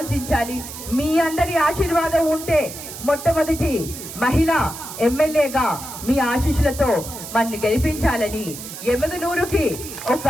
మీ అందరి ఆశీర్వాదం ఉంటే మొట్టమొదటి మహిళా ఎమ్మెల్యేగా మీ ఆశీస్సులతో మన్ని గెలిపించాలని ఎమగనూరుకి ఒక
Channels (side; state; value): right; noise; hiss, 11 dB below the sound